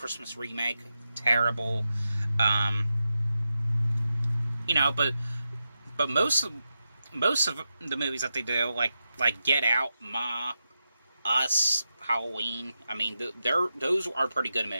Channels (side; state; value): both; inverted; correlation -0.89